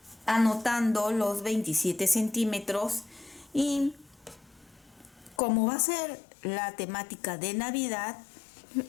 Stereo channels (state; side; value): drops out; right; at 5.4 s